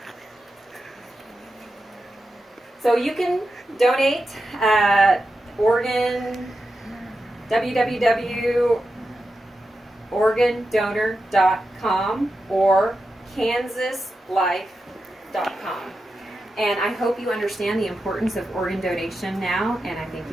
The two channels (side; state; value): both; normal; correlation 0.89